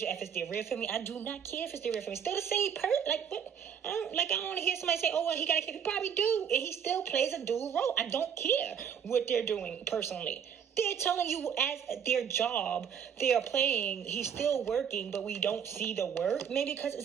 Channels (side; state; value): left; quieter; 7.9 dB